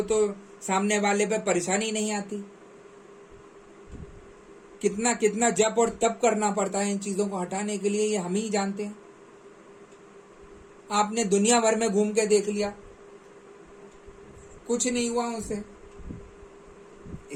तो सामने वाले पे परेशानी नहीं आती। कितना कितना जप और तप करना पड़ता है इन चीजों को हटाने के लिए, ये हम ही जानते हैं। आपने दुनिया भर में घूम के देख लिया, कुछ नहीं हुआ उनसे,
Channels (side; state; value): both; identical; correlation 1.00